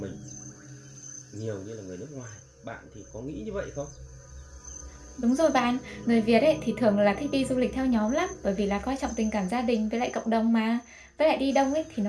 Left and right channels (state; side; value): identical; both; correlation 1.00